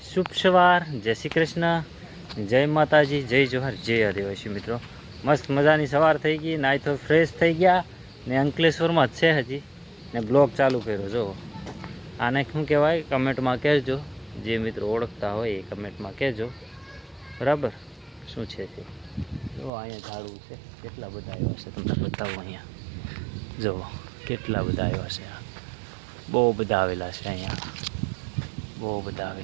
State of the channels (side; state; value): left; drops out; at 19.7 s